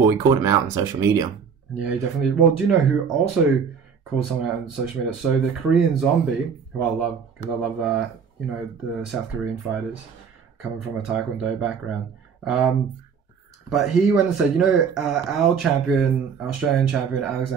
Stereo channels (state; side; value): quieter; left; 6.5 dB